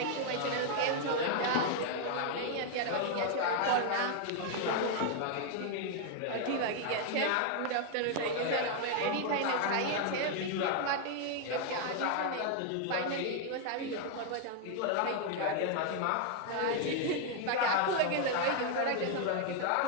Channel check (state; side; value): different; both; correlation 0.00